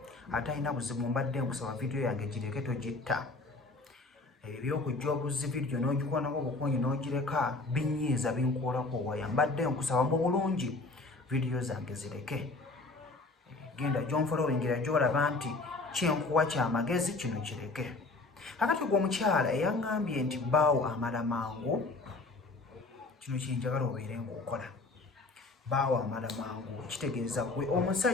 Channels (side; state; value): right; quieter; 3.4 dB